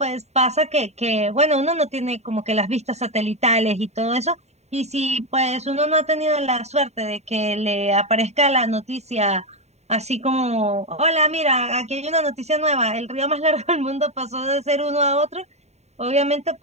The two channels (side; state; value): left; late; 0.32 ms